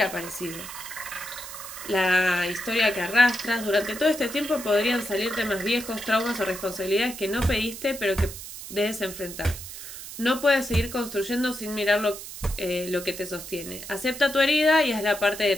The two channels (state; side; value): noise; right; hiss, 11 dB below the sound